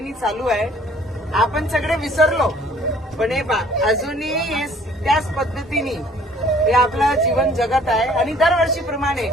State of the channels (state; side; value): normal; both; correlation 0.56